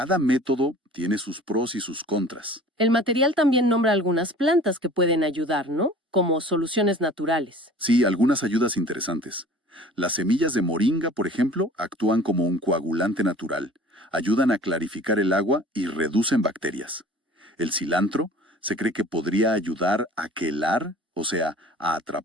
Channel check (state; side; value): normal; both; correlation 0.45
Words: método tiene sus pros y sus contras. El material también nombra algunas plantas que pueden ayudar, ¿no? Como soluciones naturales. Sí, algunas ayudas interesantes. Las semillas de moringa, por ejemplo, actúan como un coagulante natural, ayudan a clarificar el agua y reducen bacterias. El cilantro se cree que podría ayudar a quelar, o sea, a